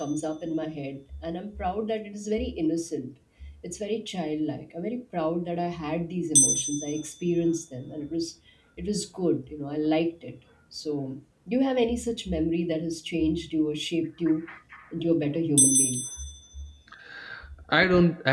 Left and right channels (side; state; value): both; identical; correlation 1.00